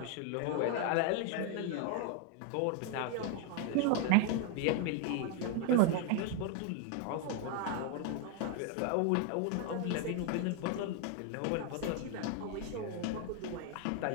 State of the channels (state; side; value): different; both; correlation 0.01